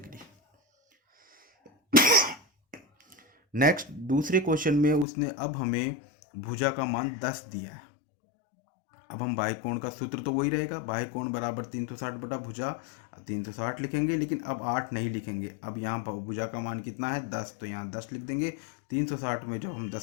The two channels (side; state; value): right; drops out; at 5.1 s